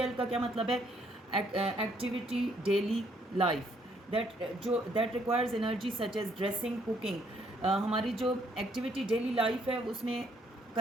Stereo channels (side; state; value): both; normal; correlation 0.68